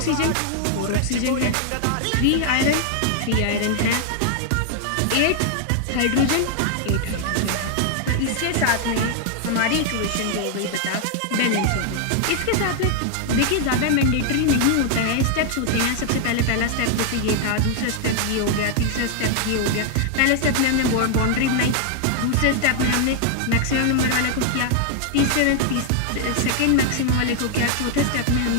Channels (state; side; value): different; both; correlation 0.00